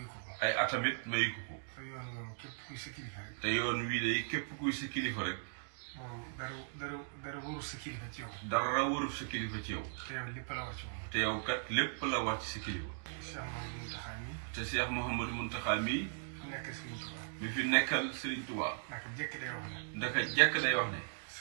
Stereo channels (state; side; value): silent; left; digital silence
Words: ay atamit mayu ko te yoon wii de képp kuy sa kilifa rek dara warul sa kilifa ci yow. dara warul sa kilifa ci yow. te yow lépp la war ci moom. te yow kat lépp la war ci sa kilifa. te Cheikh Mouhamadou Mountakha mii. mi fi nekkal Serigne Touba. ndaka jekk day wax ne.